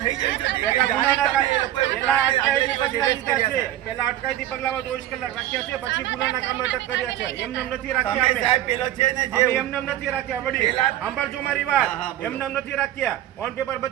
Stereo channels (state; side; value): quieter; left; 13.3 dB